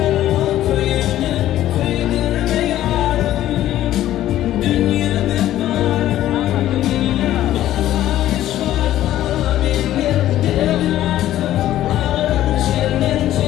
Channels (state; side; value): quieter; right; 13.3 dB